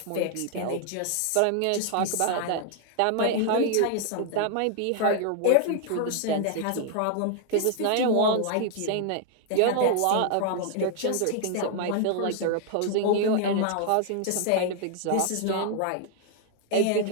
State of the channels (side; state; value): both; different; correlation 0.00